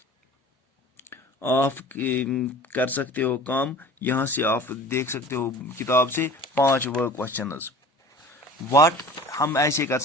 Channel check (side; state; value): both; normal; correlation 0.42